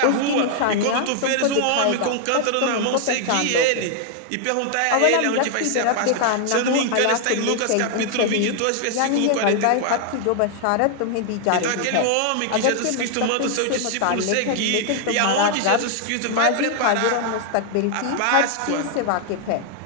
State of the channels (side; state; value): both; different; correlation 0.00